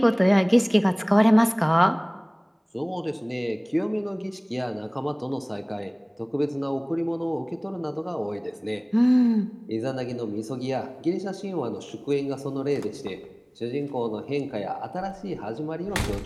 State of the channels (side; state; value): both; identical; correlation 1.00